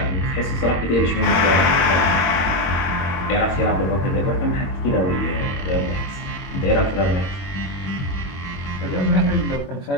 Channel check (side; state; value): right; late; 22 ms